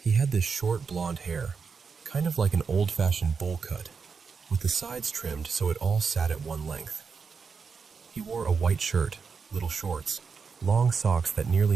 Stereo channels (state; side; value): quieter; left; 5.5 dB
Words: He had this short blonde hair, kind of like an old-fashioned bowl cut, with the sides trimmed so it all sat at one length. He wore a white shirt, little shorts, long socks that